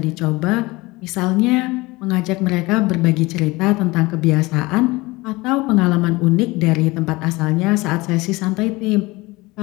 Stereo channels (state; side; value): quieter; right; 22.1 dB